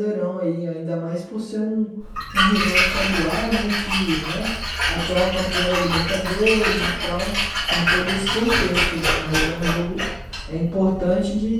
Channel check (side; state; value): both; identical; correlation 1.00